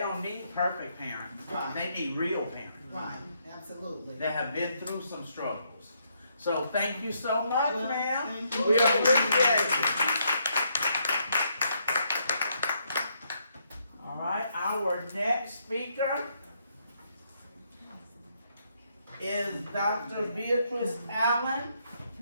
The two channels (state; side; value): inverted; both; correlation -0.75